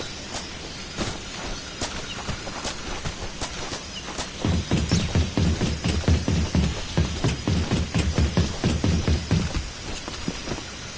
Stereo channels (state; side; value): identical; both; correlation 1.00